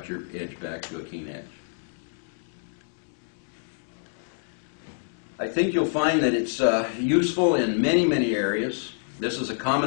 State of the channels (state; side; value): silent; right; digital silence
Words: your edge back to a keen edge. I think you'll find that it's useful in many areas. This is a